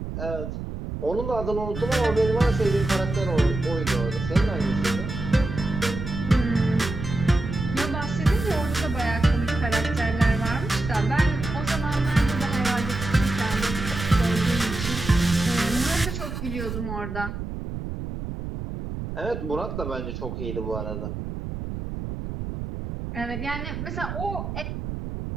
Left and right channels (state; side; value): noise; right; rumble, 6 dB below the sound